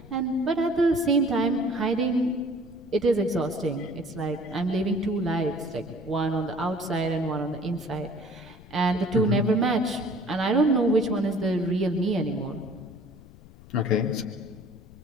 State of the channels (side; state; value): left; noise; rumble, 21 dB below the sound